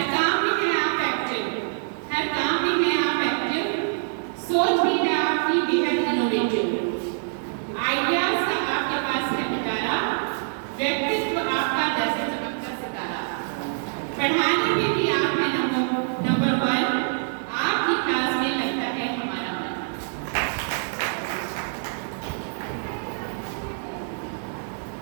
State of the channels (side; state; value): left; silent; digital silence